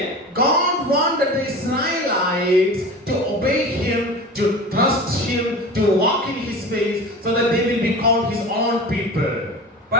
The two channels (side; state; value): both; normal; correlation 0.34